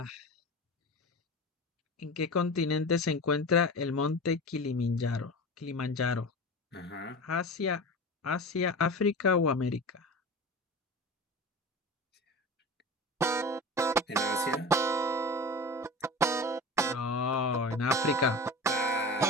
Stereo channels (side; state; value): both; normal; correlation 0.31